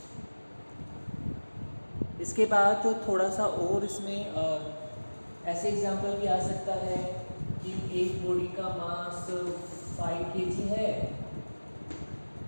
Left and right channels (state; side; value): inverted; both; correlation -1.00